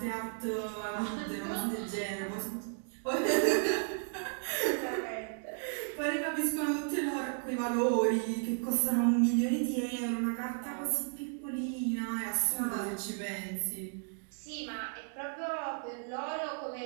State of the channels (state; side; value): silent; left; 55 dB below the other